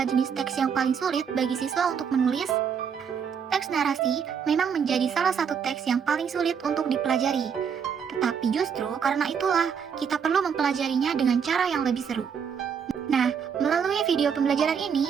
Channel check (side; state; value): left; quieter; 7.0 dB